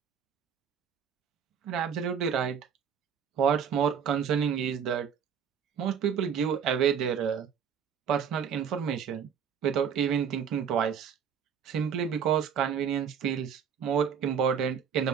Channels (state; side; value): quieter; left; 7.5 dB